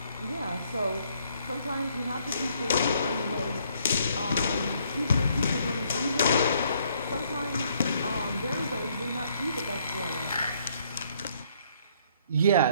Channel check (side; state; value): both; inverted; correlation -0.67